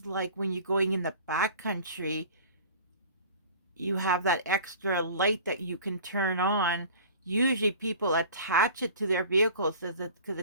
like when you're going in the backcountry, you have that extra light that you can turn on. Usually people attach it to their vehicles because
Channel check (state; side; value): inverted; both; correlation -0.43